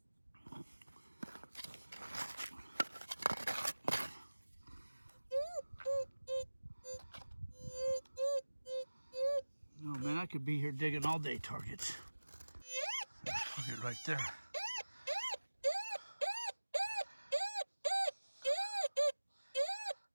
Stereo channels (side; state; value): both; inverted; correlation -1.00